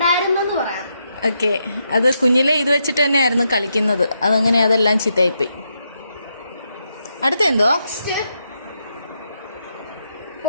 പറയാം. ഓക്കെ. അത് കുഞ്ഞിലെ ഇത് വെച്ചിട്ട് തന്നെയായിരുന്നു കളിക്കുന്നത്. അതങ്ങനെ അതെല്ലാം ചീത്തയായിപ്പോയി. അടുത്ത എന്തോ?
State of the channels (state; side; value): inverted; both; correlation -0.82